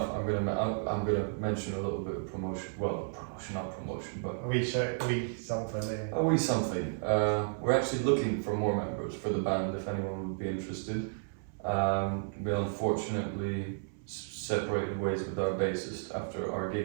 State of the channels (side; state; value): left; silent; 56 dB below the other